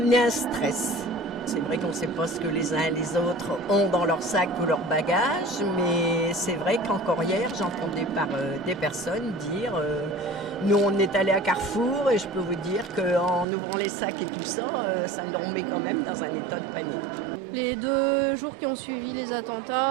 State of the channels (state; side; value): drops out; left; at 13.5 s